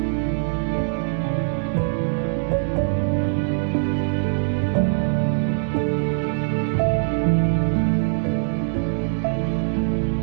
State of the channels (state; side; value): silent; left; digital silence